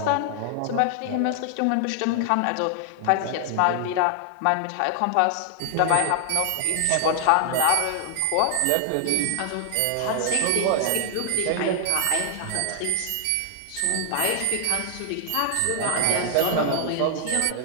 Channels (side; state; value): both; different; correlation 0.00